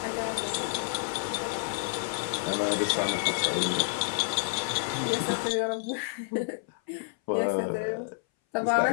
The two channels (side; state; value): right; silent; 58 dB below the other